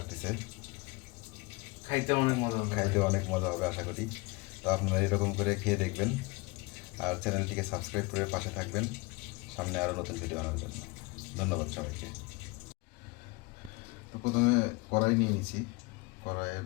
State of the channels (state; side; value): quieter; right; 25.6 dB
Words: খাইতে অনেক মজা হবে। খাইতে অনেক মজা হবে আশা করি। তো আপনারা এরকম করে খেয়ে দেখবেন, আর চ্যানেলটিকে সাবস্ক্রাইব করে পাশে থাকবেন সামনে আরও নতুন ভিডিও আনার জন্য। ধন্যবাদ সবাইকে। তো প্রথমে কড়াই নিয়ে নিয়েছি, কড়াইয়ের